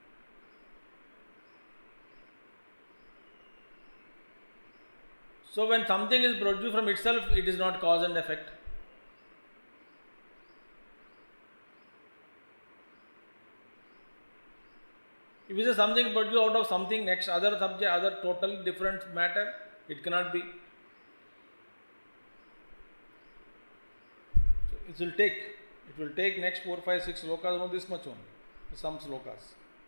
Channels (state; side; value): inverted; both; correlation -1.00